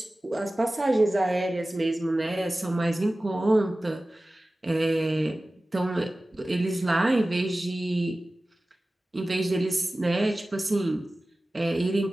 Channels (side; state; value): both; normal; correlation 0.97